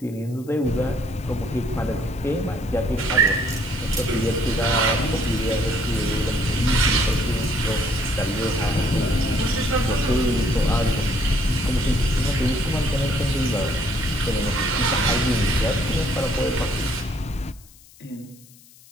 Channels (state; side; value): noise; left; hiss, 25 dB below the sound